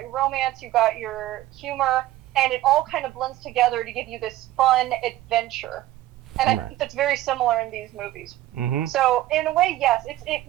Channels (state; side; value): quieter; left; 15.1 dB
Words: romance, you've got your humor, and it all kind of blends together to give you this fun adventure. And I Right. think that's very similar in these movies. Mhm. So in a way, yes,